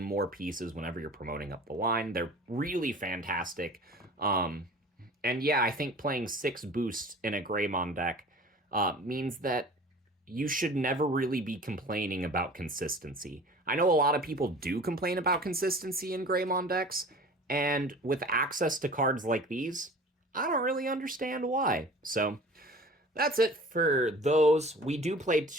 more pieces whenever you're promoting up the line. They're really fantastic. And yeah, I think playing 6 boosts in a Gaiomon deck means that you should never really be complaining about consistency. I know a lot of people do complain about consistency in Gaiomon decks, and with access to cards like these, I don't really understand why. So that's it for those. We do play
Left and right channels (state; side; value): normal; both; correlation 0.43